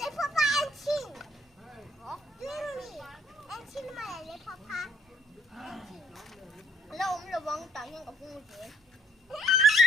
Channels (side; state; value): both; normal; correlation 0.64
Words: papa ăn xin. Hả? Dream ăn xin mà lại lấy papa. Lâu ông là vâng tự nhiên gặp con chuyện.